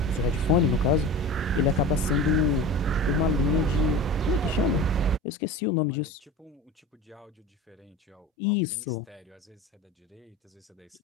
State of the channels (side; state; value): both; normal; correlation 0.33